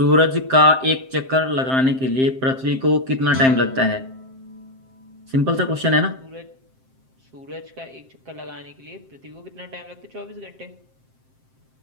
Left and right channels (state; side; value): late; left; 7.6 ms